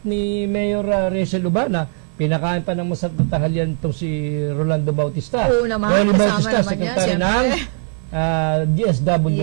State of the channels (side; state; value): left; silent; 55 dB below the other